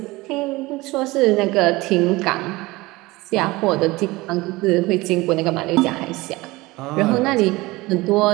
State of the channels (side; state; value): left; quieter; 21.1 dB